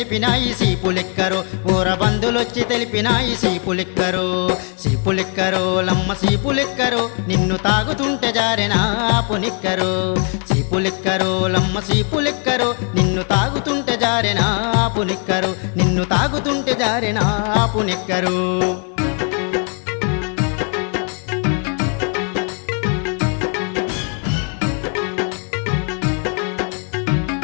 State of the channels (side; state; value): right; quieter; 39.5 dB